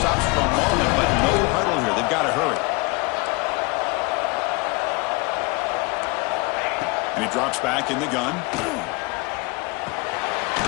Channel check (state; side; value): quieter; right; 26.3 dB